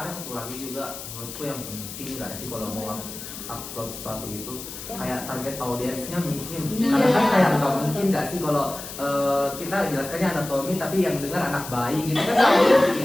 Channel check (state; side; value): noise; left; hiss, 11 dB below the sound